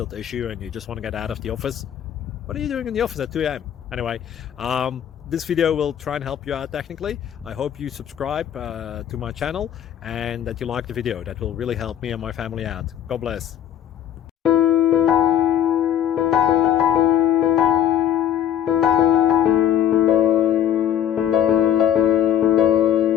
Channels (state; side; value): quieter; right; 10.3 dB